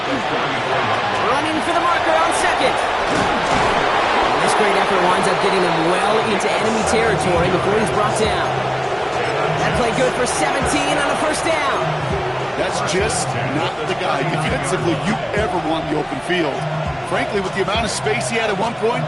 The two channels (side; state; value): both; identical; correlation 1.00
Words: Running for the marker on 2nd. This great effort winds up getting him well into enemy territory before he's brought down. That play good for 17 on a 1st down. That's just not the guy defensively you ever want in the open field. Frankly, with the amount of space he had at one point,